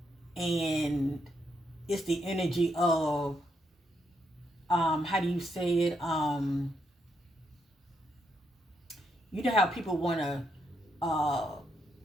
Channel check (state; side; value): normal; both; correlation 0.78